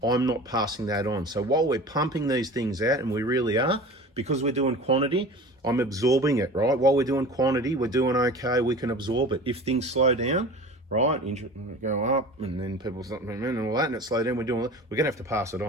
I'm not passing that on. So while we're pumping these things out, and we really are, because we're doing quantity, I'm absorbing it, right? While we're doing quantity, we're doing okay, we can absorb it. If things slow down, right? Go up, and then people start and all that, and it slow down. We're going to have to pass it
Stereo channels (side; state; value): both; normal; correlation 0.38